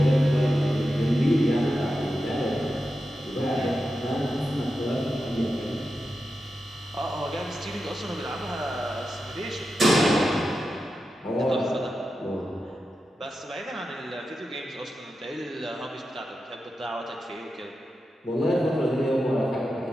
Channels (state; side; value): normal; both; correlation 0.90